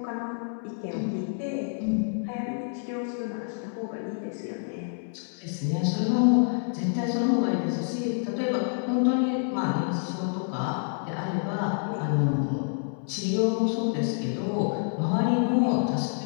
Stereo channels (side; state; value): right; silent; 60 dB below the other